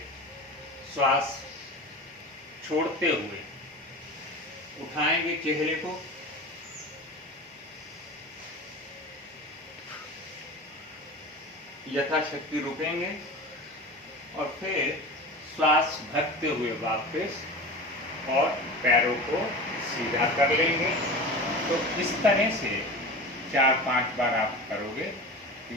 श्वास छोड़ते हुए उठाएंगे चेहरे को, यथाशक्ति रुकेंगे और फिर श्वास भरते हुए वापस और पैरों को सीधा कर लेंगे। तो इस तरह से 4-5 बार आप करोगे।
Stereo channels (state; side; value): normal; both; correlation 0.32